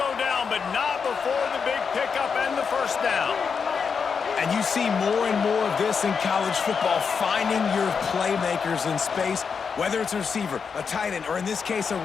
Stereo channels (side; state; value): right; quieter; 5.9 dB